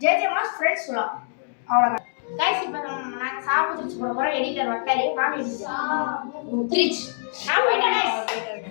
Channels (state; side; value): silent; right; digital silence